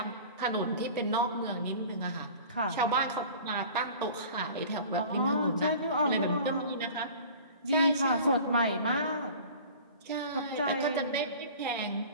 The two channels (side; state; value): both; inverted; correlation -0.42